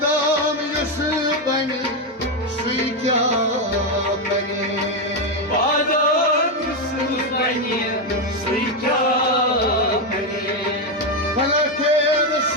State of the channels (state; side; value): normal; both; correlation 0.06